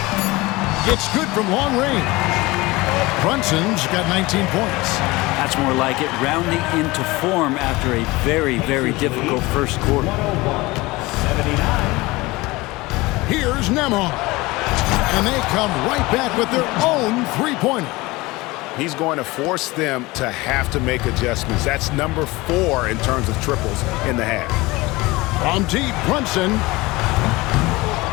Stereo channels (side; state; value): right; quieter; 21.6 dB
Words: It's good from long range. Brunson's got 19 points. That's more like it, rounding into form after a very, very difficult first quarter. Here's Nembhard. And they come right back with their own three-pointer. He's going to force them to have to make adjustments. That's number 4 in terms of triples in the half. From deep, Brunson.